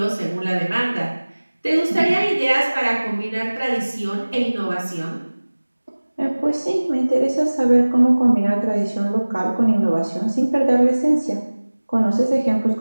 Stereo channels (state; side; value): inverted; both; correlation -1.00